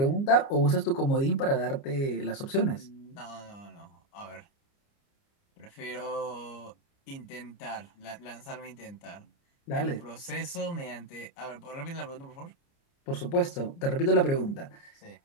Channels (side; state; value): right; late; 29 ms